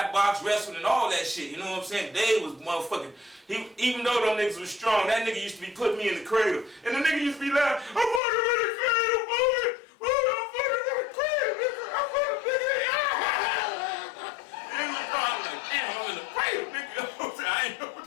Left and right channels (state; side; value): drops out; right; at 8.2 s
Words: box, wrestling, and all that shit, you know what I'm saying? Dave was motherfucking, even though them niggas was strong, that nigga used to be putting me in the cradle. And the nigga used to be like, I'm putting him in the cradle, boy! I'm putting him in the cradle, nigga! I'm putting him in the I'm like, damn, I'm in the cradle, nigga. You know what I'm saying? I ain't know.